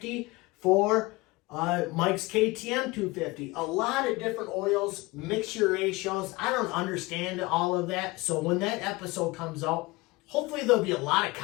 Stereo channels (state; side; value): quieter; right; 22.5 dB